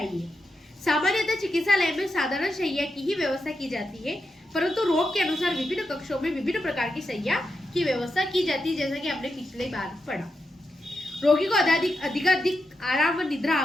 सामान्यतः चिकित्सालय में साधारण शैय्या की ही व्यवस्था की जाती है, परंतु रोग के अनुसार विभिन्न कक्षों में विभिन्न प्रकार की शैय्या की व्यवस्था की जाती है, जैसा कि हमने पिछले बार पढ़ा। रोगी को अधिकाधिक आराम व निद्रा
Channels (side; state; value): both; normal; correlation 0.87